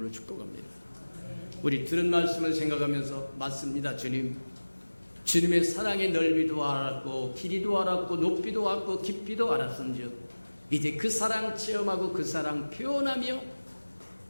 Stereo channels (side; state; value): both; inverted; correlation -1.00